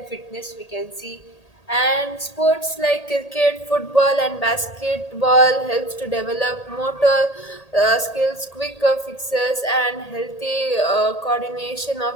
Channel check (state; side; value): late; right; 1.8 ms